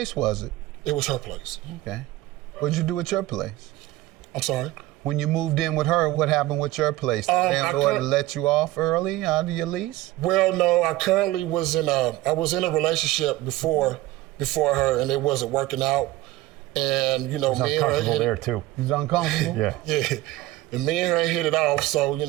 was it? It was her place. Okay. What'd you do at your place? I'm sorry? When you moved in with her, what happened with your place? The landlord let you off early out of your lease? Well, no, I currently was in a relationship before her, and it wasn't working out. And, me and her there too. He's uncomfortable? Yeah. Yeah. And me and her hit it off, so,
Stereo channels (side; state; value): left; quieter; 17.0 dB